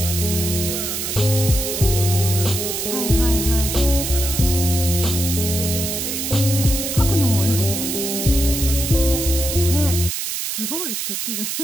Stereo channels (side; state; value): right; noise; hiss, 3 dB below the sound